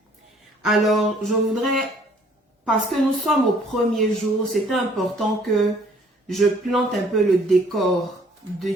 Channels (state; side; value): normal; both; correlation 0.59